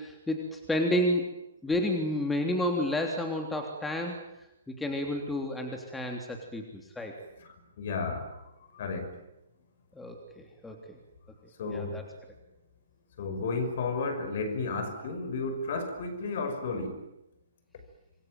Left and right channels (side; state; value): both; normal; correlation 0.09